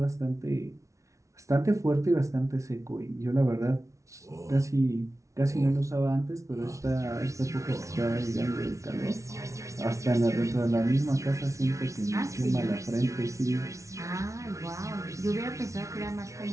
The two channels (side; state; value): left; late; 0.15 ms